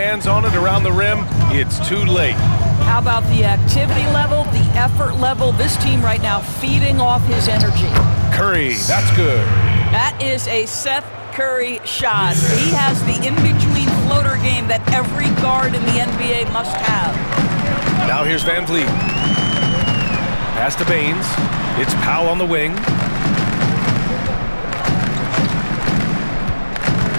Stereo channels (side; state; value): both; inverted; correlation -1.00